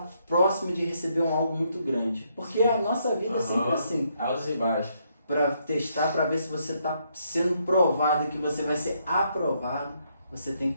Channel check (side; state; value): both; inverted; correlation -0.75